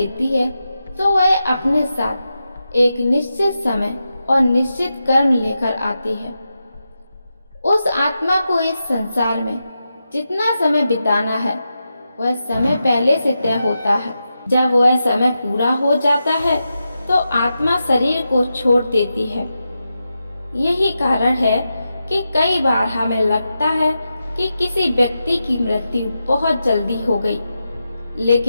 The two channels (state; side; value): inverted; both; correlation -0.89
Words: है तो वह अपने साथ एक निश्चित समय और निश्चित कर्म लेकर आती है। उस आत्मा को इस संसार में जितना समय बिताना है वह समय पहले से तय होता है। जब वह समय पूरा हो जाता है तो आत्मा शरीर को छोड़ देती है। यही कारण है कि कई बार हमें लगता है कि किसी व्यक्ति की मृत्यु बहुत जल्दी हो गई,